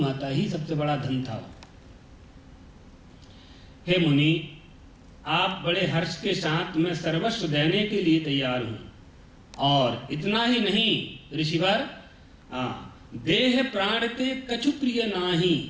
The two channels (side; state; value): both; identical; correlation 1.00